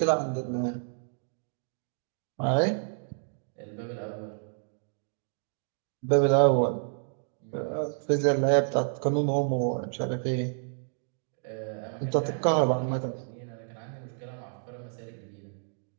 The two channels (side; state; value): left; silent; digital silence